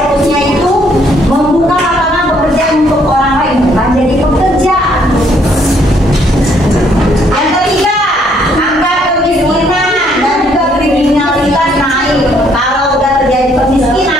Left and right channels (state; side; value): normal; both; correlation 0.67